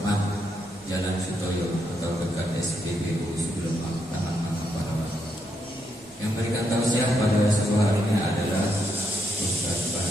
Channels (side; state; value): both; normal; correlation 0.79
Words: Jalan Sutoyo atau dekat SPBU sebelum taman Parawan. Yang berikan tausiah pada subuh hari ini adalah Ustaz